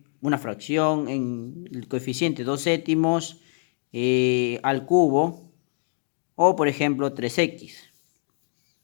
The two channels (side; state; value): right; silent; 62 dB below the other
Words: una fracción en el coeficiente 2 séptimos al cubo. O, por ejemplo, 3x.